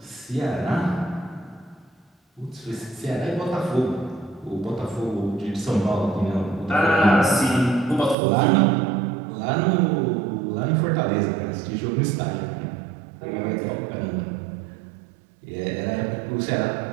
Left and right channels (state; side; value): drops out; left; at 8.2 s